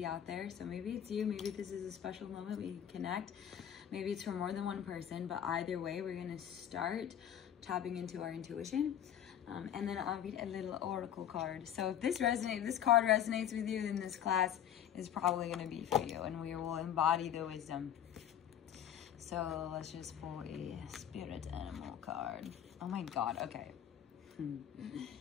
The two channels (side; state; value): right; quieter; 9.9 dB